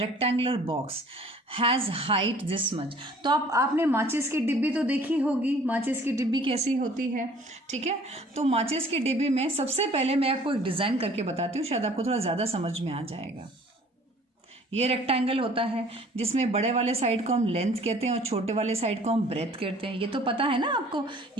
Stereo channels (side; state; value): both; normal; correlation 0.52